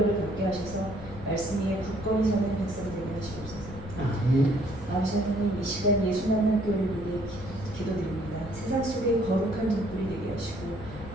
갖게 하셔서 말씀 위에 굳건히 서는 백성 되게 하시옵소서. 아버지 하나님, 이 시간 예수 만난 교회를 위해 기도드립니다. 세상 속에 거룩한 등불이 되게 하시고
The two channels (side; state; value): left; noise; rumble, 12 dB below the sound